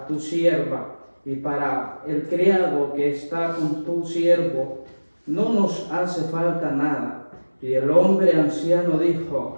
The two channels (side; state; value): both; inverted; correlation -1.00